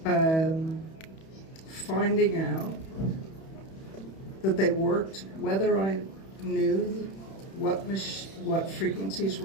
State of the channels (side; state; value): right; late; 31 ms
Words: finding out that they worked, whether I knew what frequencies